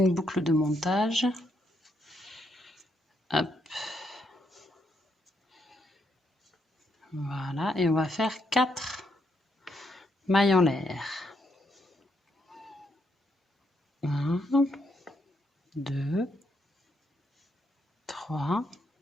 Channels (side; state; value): both; normal; correlation 0.77